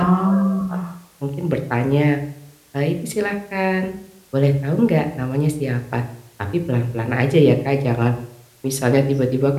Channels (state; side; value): identical; both; correlation 1.00